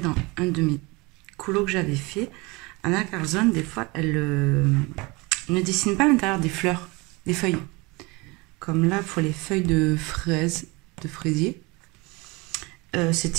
un de mes colos que j'avais fait. Anna Carzon, des fois, elle ne dessine pas à l'intérieur des fleurs, des feuilles. Comme là, pour les feuilles de fraises, de fraisier.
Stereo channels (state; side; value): quieter; left; 25.4 dB